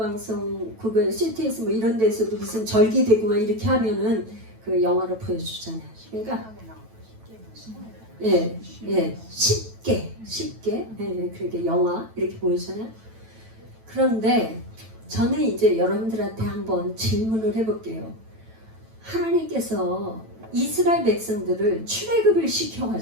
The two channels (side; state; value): left; late; 9.1 ms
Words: 그거 CTS 뭐 이런 데서도 무슨 절기되고 막 이렇게 하면은 그 영화로 보여주잖아요. 그러니까 쉽게 그렇게 영화 이렇게 보여주잖아요. 그런데 저는 이제 여러분들한테 한번 질문을 해볼게요. 하나님께서 이스라엘 백성들을 출애굽을